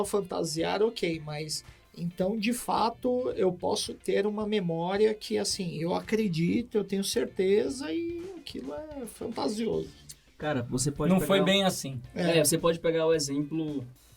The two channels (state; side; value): identical; both; correlation 1.00